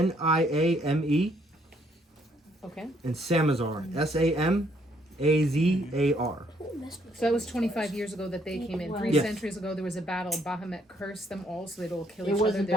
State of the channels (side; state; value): both; normal; correlation 0.68